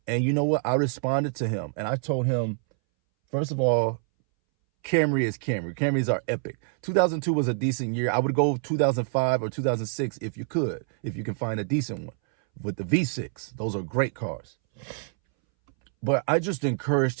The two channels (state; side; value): silent; left; 61 dB below the other